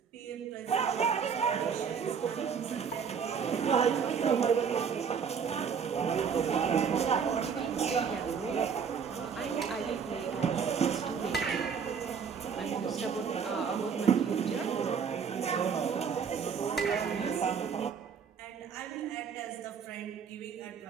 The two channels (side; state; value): left; quieter; 6.7 dB